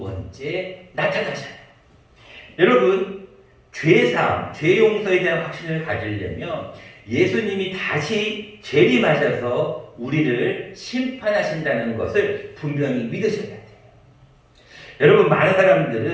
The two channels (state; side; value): identical; both; correlation 1.00